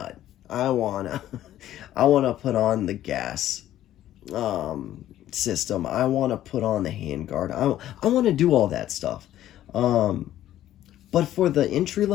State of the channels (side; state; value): right; quieter; 12.8 dB